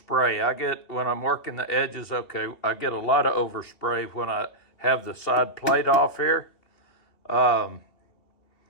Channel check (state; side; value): late; right; 2.9 ms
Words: When I'm working the edges, I get a lot of overspray when I have the side plate off here. But